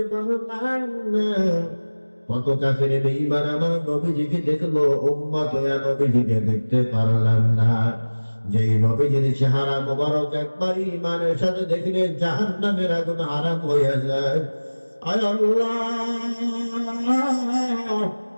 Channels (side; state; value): both; inverted; correlation -1.00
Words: পারলাম না। কত কাফের বেঈমান আমার নবীজিকে দেখলো, উম্মত হয়ে নবীজিকে দেখতে পারলাম না। যেই নবীজির চেহারা মোবারক একবার ঈমানের সাথে দেখলে জাহান্নামের আগুন হারাম হয়ে যায়। আয় আল্লাহ